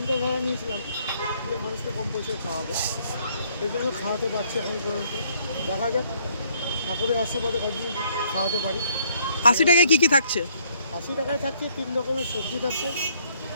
নিয়েছিলাম যে মানুষকে কম পয়সায় খাওয়াবো, এই জন্য খাওয়াতে পারছি এখন পর্যন্ত। দেখা যাক ঠাকুরের আশীর্বাদে কতদিন খাওয়াতে পারি। ৮০ টাকায় কি কি থাকছে? ৮০ টাকায় থাকছে ৩ রকমের সবজি থাকছে,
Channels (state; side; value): inverted; both; correlation -0.66